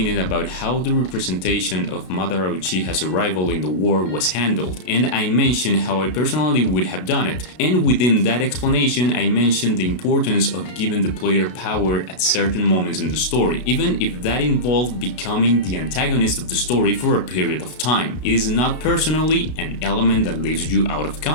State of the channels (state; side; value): late; right; 32 ms